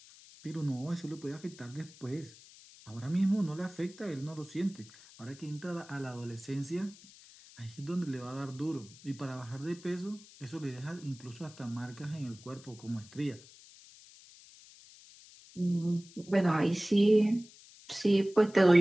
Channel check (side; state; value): left; noise; hiss, 21 dB below the sound